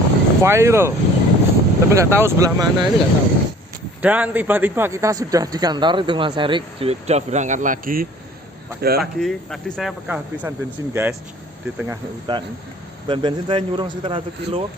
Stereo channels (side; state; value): both; normal; correlation 0.51